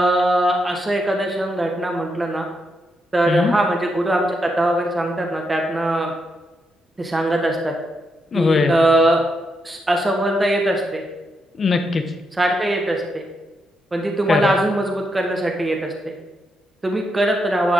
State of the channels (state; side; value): normal; both; correlation 0.81